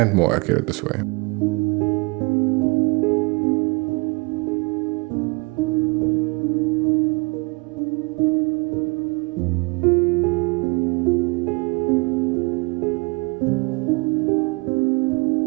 more accurate this way.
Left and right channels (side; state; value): left; quieter; 28.9 dB